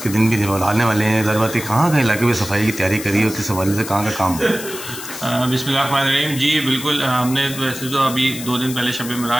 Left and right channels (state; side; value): noise; left; hiss, 10 dB below the sound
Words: के दिन भी आने वाले हैं। ज़रूरत कहाँ कहाँ इलाके में सफाई की तैयारी करी है, किस हवाले से कहाँ का काम है? बिस्मिल्लाहिर्रहमानिर्रहीम। जी बिल्कुल, हमने वैसे तो अभी 2 दिन पहले शब